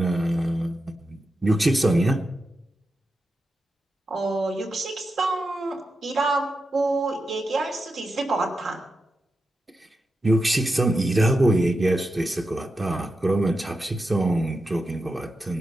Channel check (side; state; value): both; normal; correlation 0.89